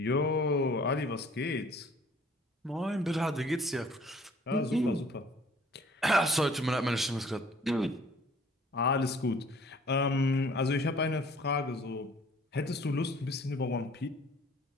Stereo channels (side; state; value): both; normal; correlation 0.55